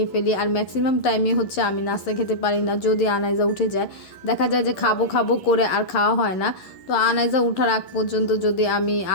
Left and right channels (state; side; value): late; right; 11 ms